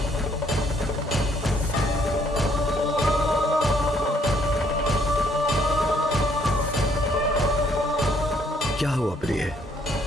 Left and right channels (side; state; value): both; normal; correlation 0.66